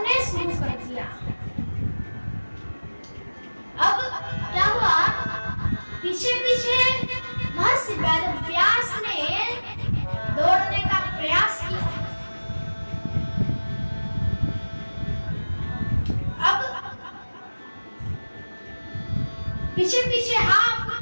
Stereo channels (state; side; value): inverted; both; correlation -1.00